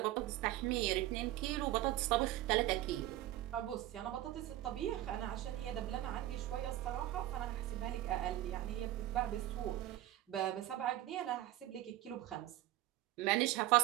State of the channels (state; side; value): quieter; left; 14.8 dB